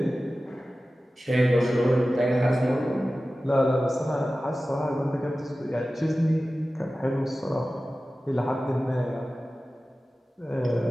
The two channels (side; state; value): both; normal; correlation 0.95